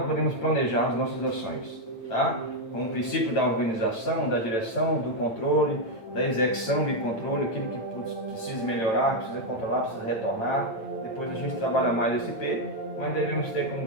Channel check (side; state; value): right; late; 8.9 ms